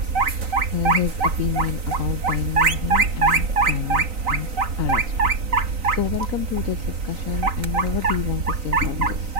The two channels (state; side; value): late; left; 3.9 ms